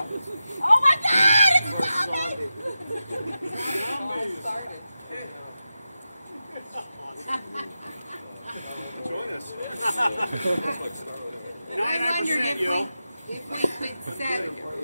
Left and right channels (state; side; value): inverted; both; correlation -0.92